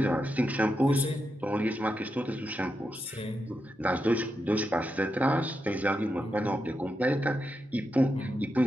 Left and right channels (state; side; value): normal; both; correlation 0.86